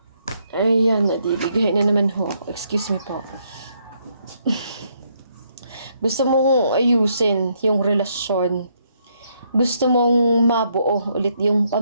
Ayan, nadibigay na naman ho. Excuse me po. Gusto mong ayusin yung relasyon. Gusto mong mabuo ulit yung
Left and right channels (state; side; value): inverted; both; correlation -0.74